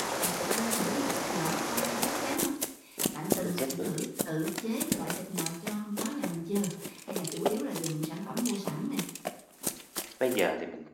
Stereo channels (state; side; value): identical; both; correlation 1.00